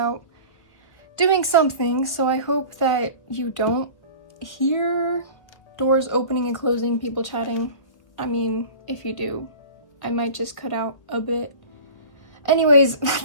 doing something, so I hope that you don't hear doors opening and closing, people chatting. I mean, if you do, I might just cut out a bit. Anyways,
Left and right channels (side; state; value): right; late; 1.2 ms